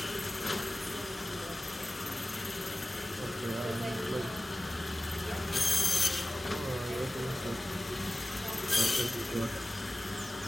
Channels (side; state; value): both; normal; correlation 0.96